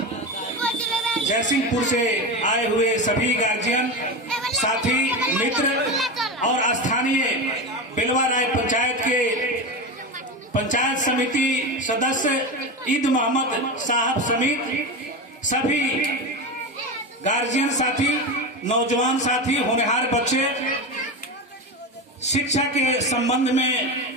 जयसिंहपुर से आए हुए सभी गार्जियन, साथी, मित्र और स्थानीय बिलवा राय पंचायत के पंचायत समिति सदस्य ईद मोहम्मद साहब समेत सभी गार्जियन साथी, नौजवान साथी, होनहार बच्चे, शिक्षा के संबंध में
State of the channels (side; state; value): both; normal; correlation 0.20